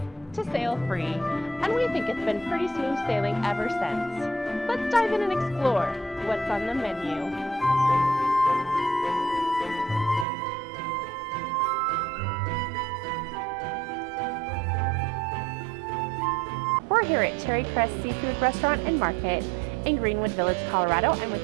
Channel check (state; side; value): drops out; left; at 10.2 s